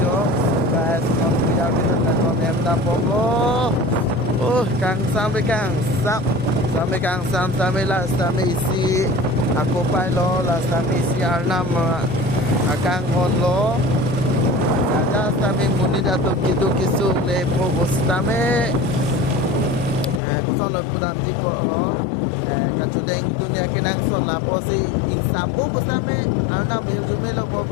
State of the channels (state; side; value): drops out; right; at 20.2 s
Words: yo guys non bujal dun benon hem bang bom lo kang sampai kang sampai lah sampai isi aku pai lo lah sampai isi arnam akang hon lo ada kami muni datuk kitu kisung le provos tame kusol pudam tipo ho kacudeng dunia kenang sol la posi insapo kusame arna mejume lo